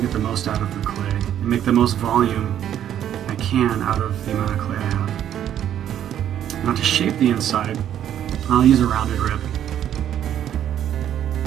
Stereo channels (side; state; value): left; quieter; 10.5 dB